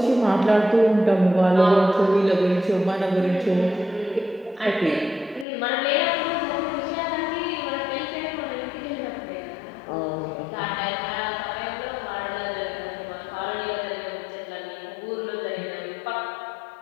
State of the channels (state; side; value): drops out; right; at 5.5 s